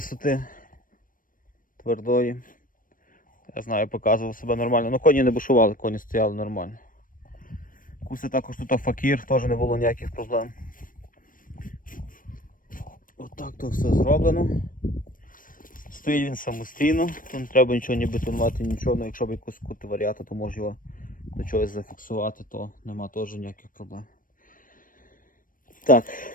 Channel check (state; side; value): late; right; 0.40 ms